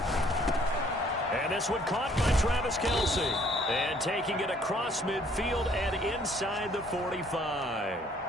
And this one caught by Travis Kelce. And taking it across midfield and inside the 45.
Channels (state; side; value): normal; both; correlation 0.61